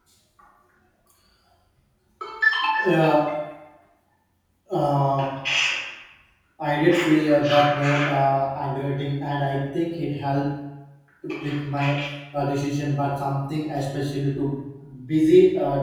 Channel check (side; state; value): both; identical; correlation 1.00